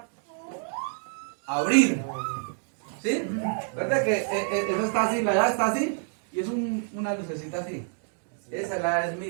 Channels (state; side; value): silent; left; 59 dB below the other